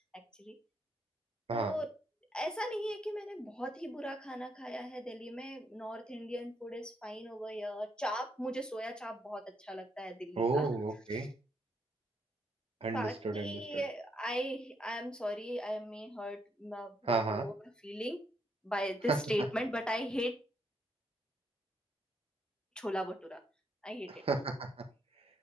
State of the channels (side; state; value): both; normal; correlation 0.75